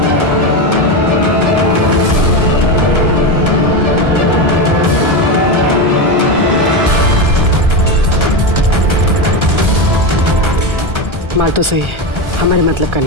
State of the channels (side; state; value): left; late; 1.4 ms